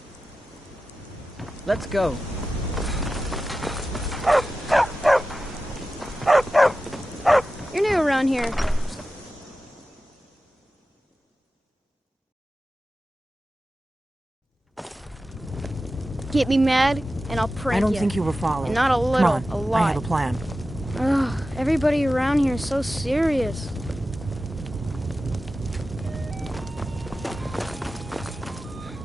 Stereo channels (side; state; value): both; normal; correlation 0.94